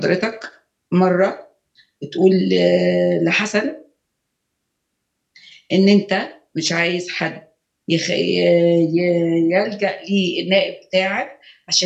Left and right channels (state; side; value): identical; both; correlation 1.00